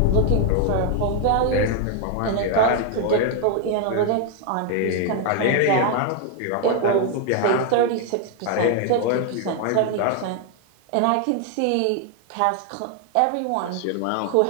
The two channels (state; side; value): different; both; correlation 0.01